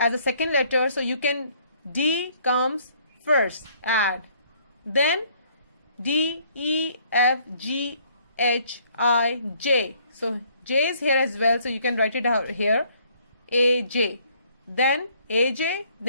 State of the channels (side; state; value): both; inverted; correlation -0.63